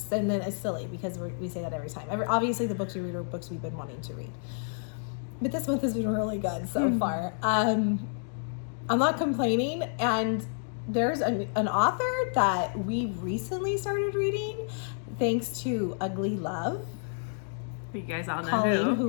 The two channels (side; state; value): right; silent; digital silence